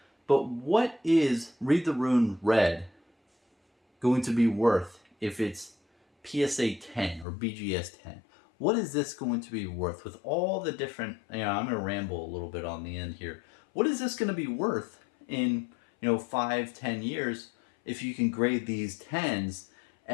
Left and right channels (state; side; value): drops out; right; at 7.2 s